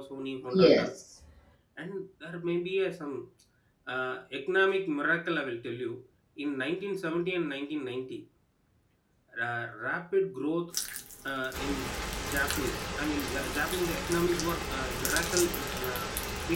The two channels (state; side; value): identical; both; correlation 1.00